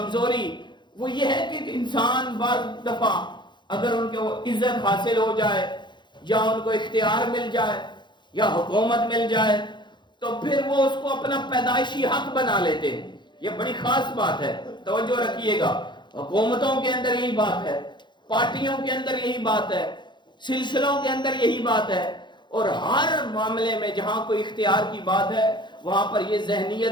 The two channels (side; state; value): right; late; 0.22 ms